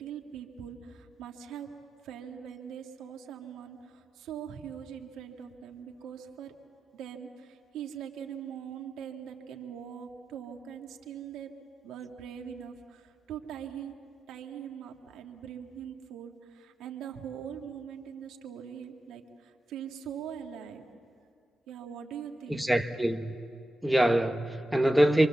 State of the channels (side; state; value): both; normal; correlation 0.91